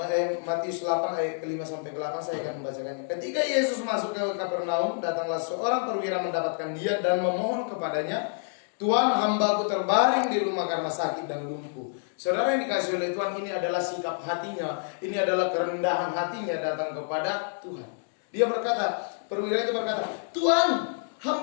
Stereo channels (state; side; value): silent; right; digital silence